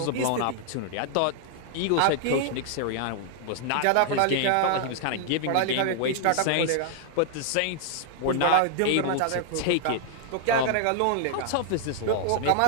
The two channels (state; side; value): different; both; correlation 0.00